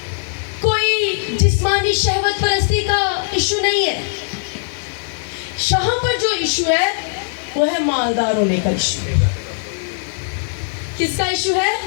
कोई जिस्मानी शहवत परस्ती का इशू नहीं है। यहाँ पर जो इशू है वो है मालदार होने का इशू। किसका इशू है?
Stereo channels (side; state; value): right; silent; digital silence